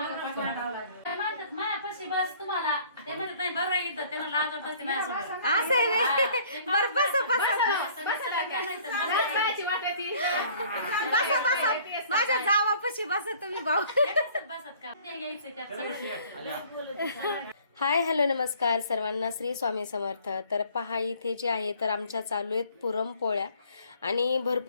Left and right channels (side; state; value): both; inverted; correlation -0.55